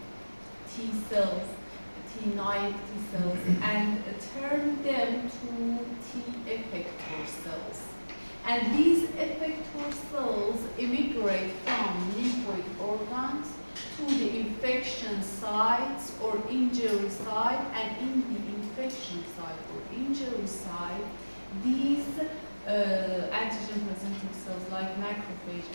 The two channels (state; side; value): inverted; both; correlation -1.00